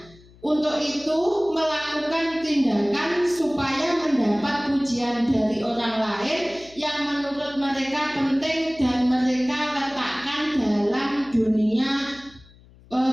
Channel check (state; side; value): noise; left; hum, 25 dB below the sound